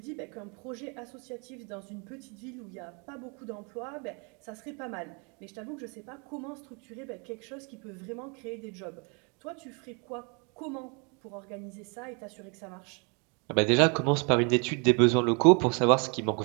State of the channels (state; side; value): quieter; left; 34.1 dB